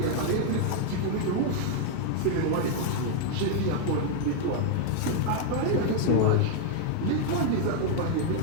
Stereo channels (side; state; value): both; different; correlation 0.00